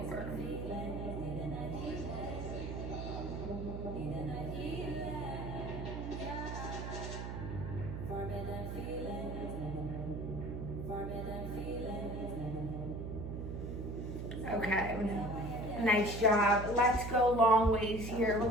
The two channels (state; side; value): noise; right; hum, 5 dB below the sound